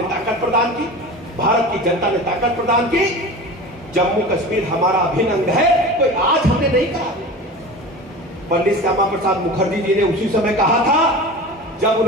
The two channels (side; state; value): both; normal; correlation 0.33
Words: ताकत प्रदान की, भारत की जनता ने ताकत प्रदान की, जम्मू कश्मीर हमारा अभिन्न अंग है, कोई आज हमने नहीं कहा। पंडित श्यामा प्रसाद मुखर्जी जी ने उसी समय कहा था जब